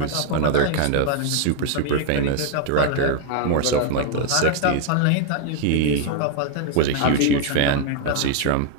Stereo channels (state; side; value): different; both; correlation 0.00